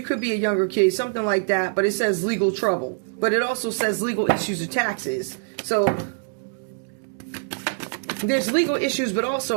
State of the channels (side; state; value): left; silent; digital silence